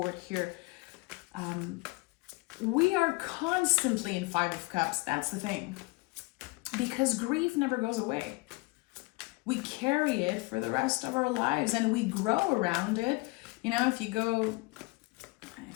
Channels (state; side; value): quieter; right; 25.0 dB